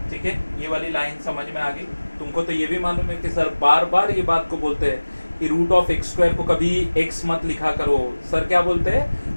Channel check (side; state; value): both; inverted; correlation -1.00